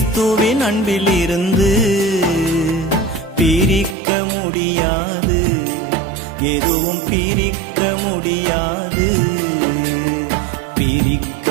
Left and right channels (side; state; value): left; drops out; at 4.0 s